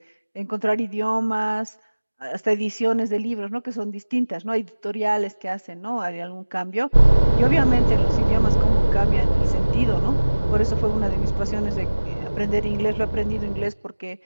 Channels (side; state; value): both; inverted; correlation -1.00